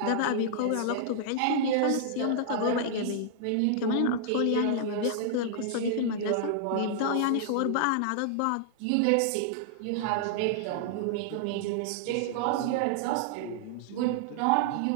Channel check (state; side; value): different; both; correlation -0.01